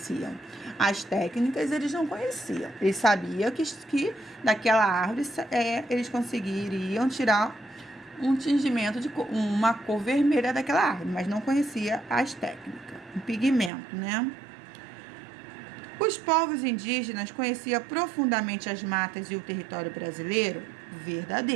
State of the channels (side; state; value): left; drops out; at 13.7 s